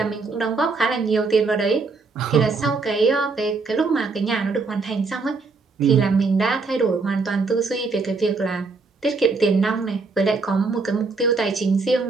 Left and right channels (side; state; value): left; quieter; 4.1 dB